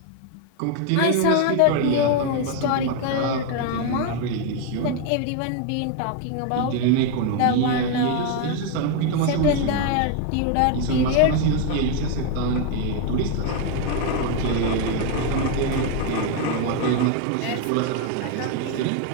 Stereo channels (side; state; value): both; different; correlation 0.01